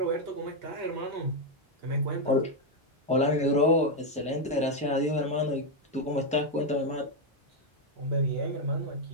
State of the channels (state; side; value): normal; both; correlation 0.03